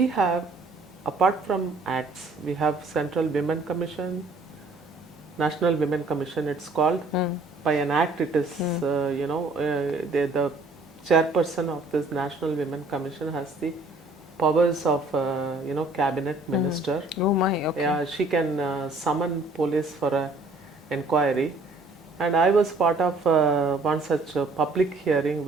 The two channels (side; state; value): left; quieter; 3.2 dB